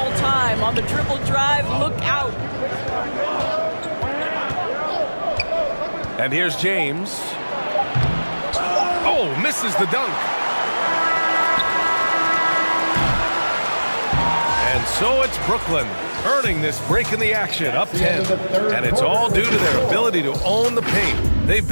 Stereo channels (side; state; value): both; inverted; correlation -1.00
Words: time. On the dribble drive, look out. And here's James. Oh, misses the dunk. And so it's Brooklyn earning this break in the action, up 10. And it's all due to their ability to own the paint. They've